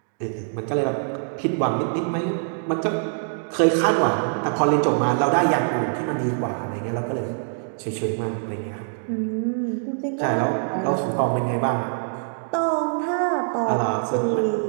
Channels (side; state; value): left; silent; digital silence